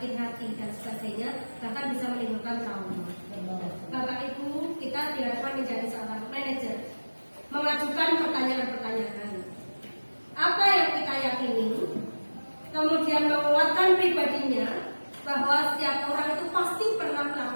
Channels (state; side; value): inverted; both; correlation -1.00